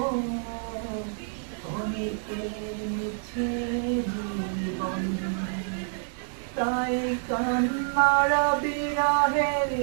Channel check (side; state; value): left; silent; digital silence